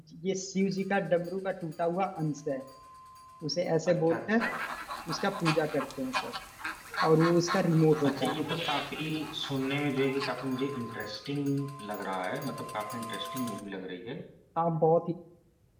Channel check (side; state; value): both; identical; correlation 1.00